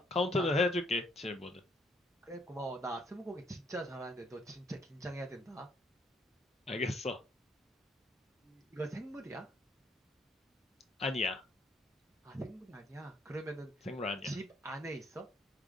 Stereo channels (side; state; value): both; normal; correlation 0.67